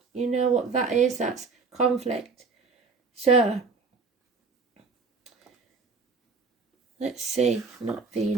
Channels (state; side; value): quieter; left; 4.6 dB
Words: you know what that is, that's conflict. So, let's see, not